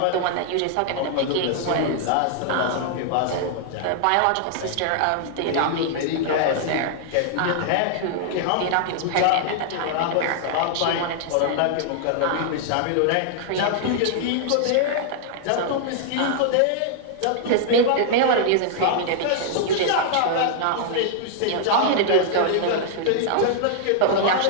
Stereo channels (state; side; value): different; both; correlation -0.01